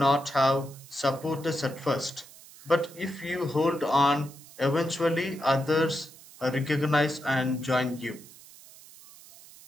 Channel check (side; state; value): right; noise; hiss, 21 dB below the sound